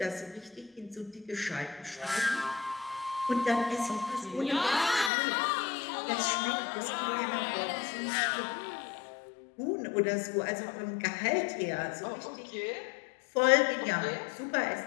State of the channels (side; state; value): right; drops out; at 5.1 s